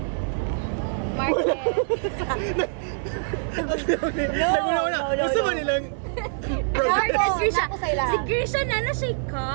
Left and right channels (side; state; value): left; silent; 62 dB below the other